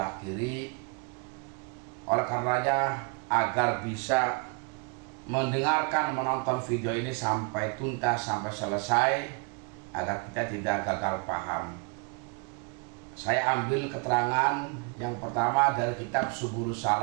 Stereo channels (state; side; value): quieter; left; 33.8 dB